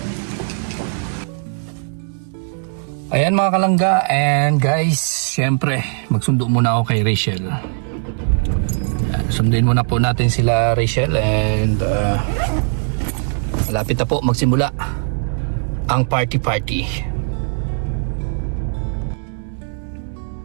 Ayan mga kalangga, and guys, syempre magsundo muna ako kay Rachel. Sundin muna po natin sila Rachel, and malapit na po magsimula ang party.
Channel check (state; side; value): silent; left; 66 dB below the other